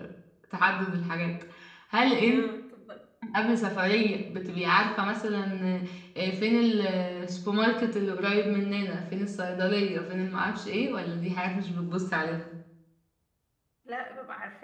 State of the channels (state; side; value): identical; both; correlation 1.00